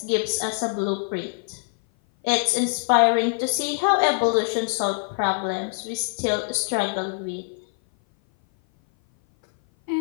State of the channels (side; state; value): right; silent; 57 dB below the other